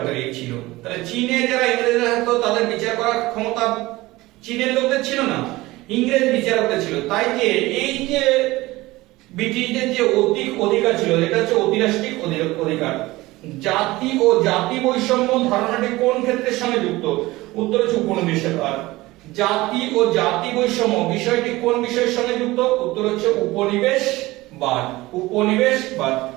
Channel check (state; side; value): quieter; left; 19.4 dB